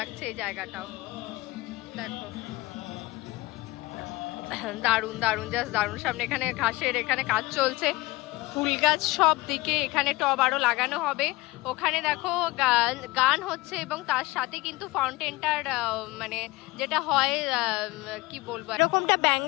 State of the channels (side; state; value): right; quieter; 21.2 dB